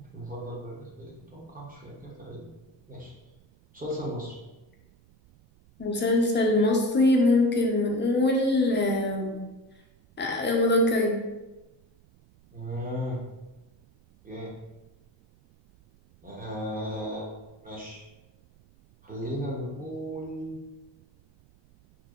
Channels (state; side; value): noise; right; rumble, 29 dB below the sound